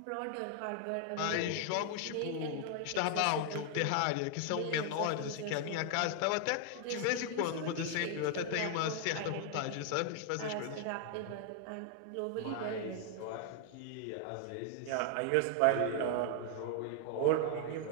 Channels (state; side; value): different; both; correlation 0.00